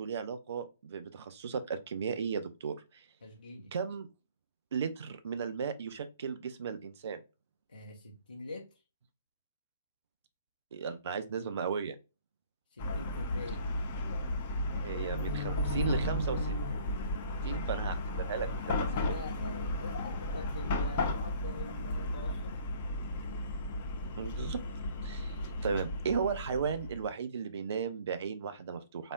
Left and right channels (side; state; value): both; inverted; correlation -0.55